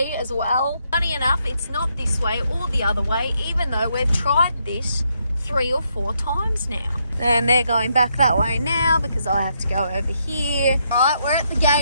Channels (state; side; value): inverted; both; correlation -0.77